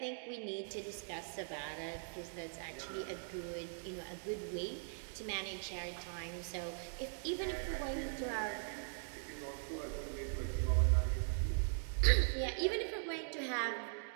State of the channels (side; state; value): left; silent; digital silence